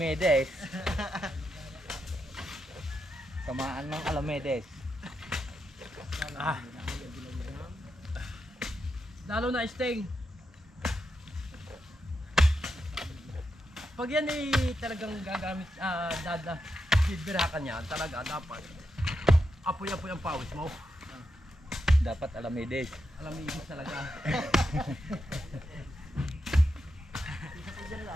Kamaan ng Alamedes. Lalo na sting. Pag yan ay talagang gagamit, bibirakan yan, talaga dapat apoy-apoy ang pawis mo. Dapat Alamedes. Alam mo ibig talaga. Isa po dyan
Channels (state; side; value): normal; both; correlation 0.85